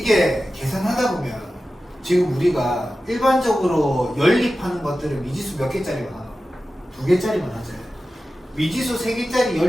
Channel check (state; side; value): normal; both; correlation 0.93